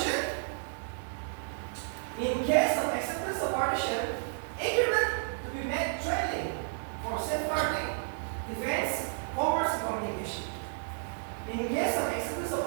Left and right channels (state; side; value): silent; left; digital silence